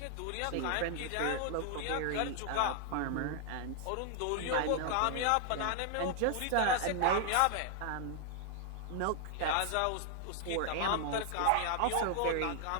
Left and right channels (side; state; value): both; different; correlation 0.00